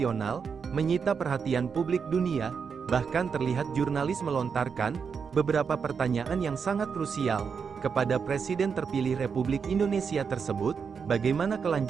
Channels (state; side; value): quieter; left; 6.1 dB